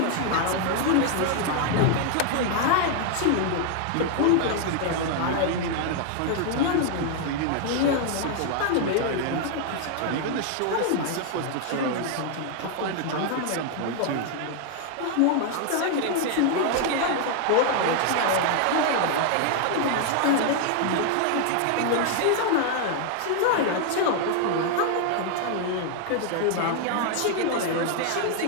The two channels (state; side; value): different; both; correlation 0.00